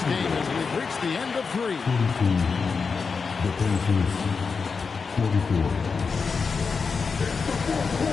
game as we've reached the end of three. The Pacers, 44.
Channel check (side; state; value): right; quieter; 5.1 dB